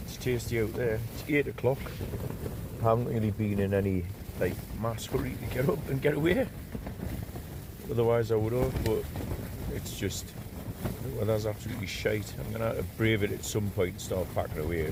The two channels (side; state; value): both; identical; correlation 1.00